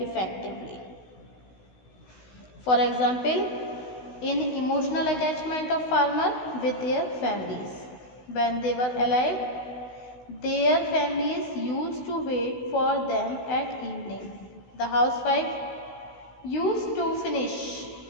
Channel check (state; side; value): late; right; 16 ms